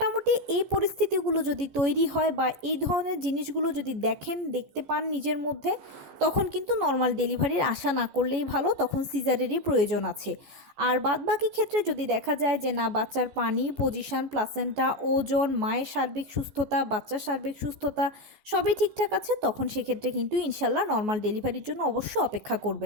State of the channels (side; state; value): left; late; 14 ms